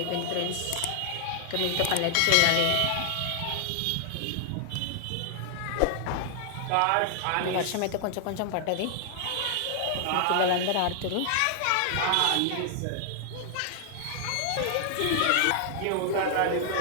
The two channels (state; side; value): different; both; correlation 0.00